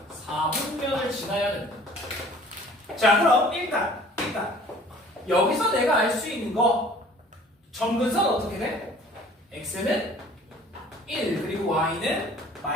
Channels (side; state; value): both; normal; correlation 0.51